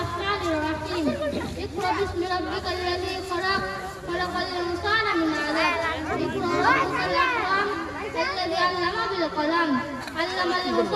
الرحيم اقرأ باسم ربك الذي خلق خلق الإنسان من علق اقرأ ربك الأكرم الذي علم بالقلم علم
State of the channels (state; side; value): identical; both; correlation 1.00